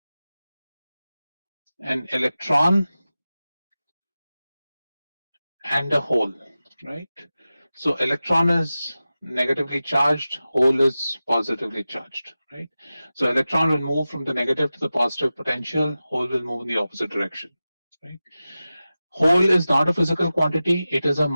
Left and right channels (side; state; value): both; inverted; correlation -0.95